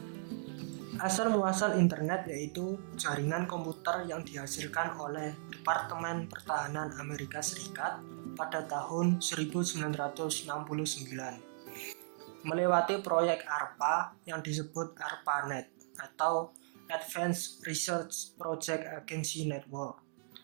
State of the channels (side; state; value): left; silent; digital silence